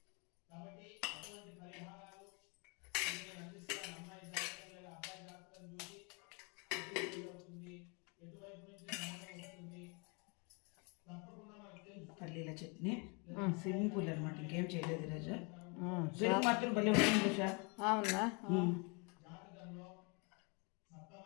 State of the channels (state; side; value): quieter; right; 32.7 dB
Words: పల్లీల చట్నీ సింపుల్ అనమాట, ఇంకేం చేయలేదు ఈరోజు. పెరుగు మాత్రం భలే ఉంటుంది సార్. అవునా?